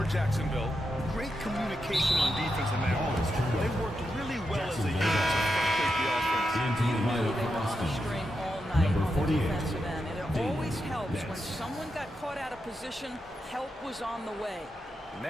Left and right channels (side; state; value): both; normal; correlation 0.86